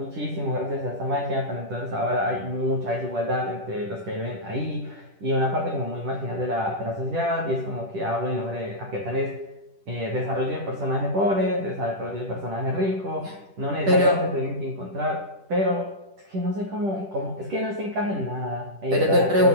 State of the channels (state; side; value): late; left; 10 ms